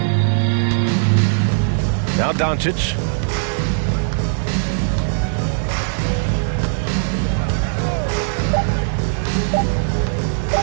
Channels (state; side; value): silent; left; 66 dB below the other